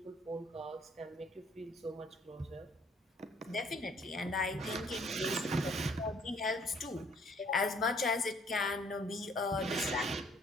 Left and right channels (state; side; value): normal; both; correlation 0.61